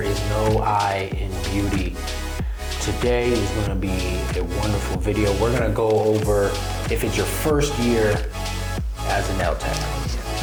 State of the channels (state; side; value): identical; both; correlation 1.00